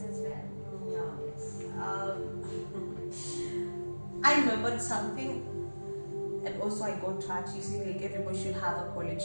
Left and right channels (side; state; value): both; inverted; correlation -1.00